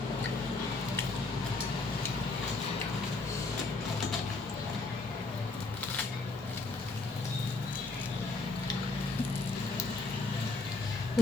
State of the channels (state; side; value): quieter; right; 3.5 dB